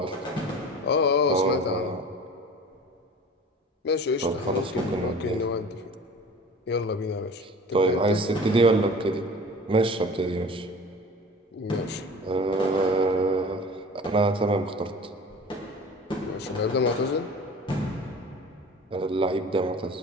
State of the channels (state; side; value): normal; both; correlation 0.41